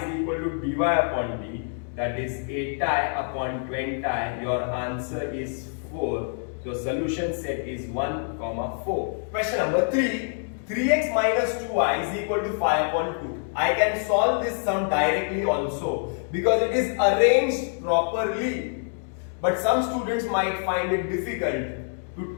equal to dy upon d, that is 8 upon 20. Your answer is 4. So solution set is 1, 4. Question number 3. 3x minus 2y is equal to 5 upon 2. I can solve this sum directly also because it is arranged properly. But some students might find it difficult to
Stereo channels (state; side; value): silent; right; 61 dB below the other